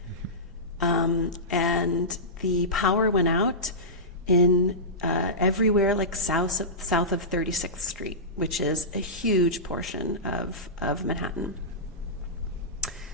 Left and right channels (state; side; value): normal; both; correlation -0.16